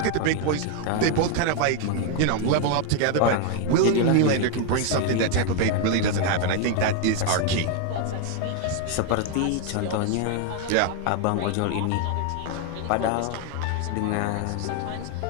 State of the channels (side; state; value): both; different; correlation 0.01